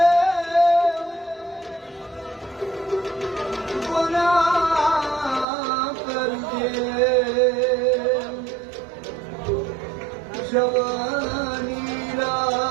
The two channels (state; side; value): drops out; left; at 5.5 s